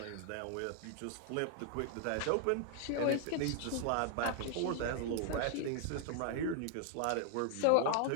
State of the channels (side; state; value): both; different; correlation 0.00